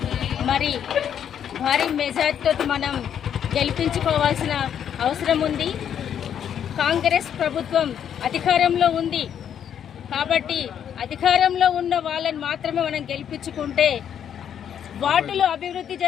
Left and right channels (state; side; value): quieter; right; 9.0 dB